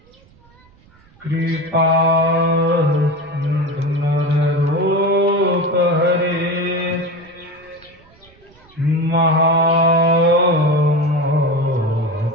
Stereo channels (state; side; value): noise; right; rumble, 29 dB below the sound